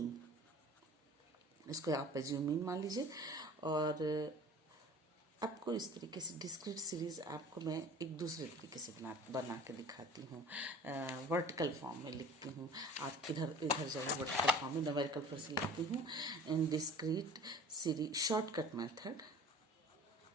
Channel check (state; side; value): normal; both; correlation 0.44